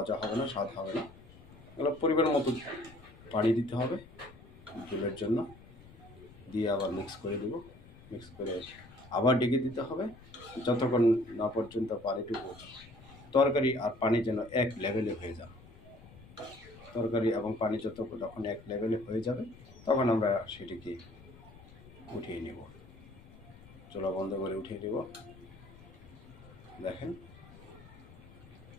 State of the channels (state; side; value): noise; left; rumble, 20 dB below the sound